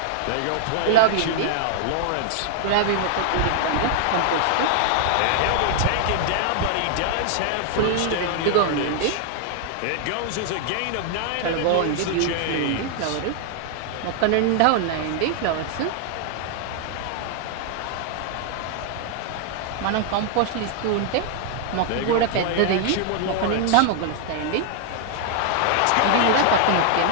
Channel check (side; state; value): both; different; correlation -0.01